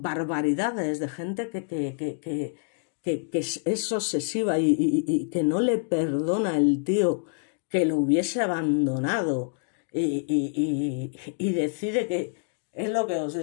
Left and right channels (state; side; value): silent; right; digital silence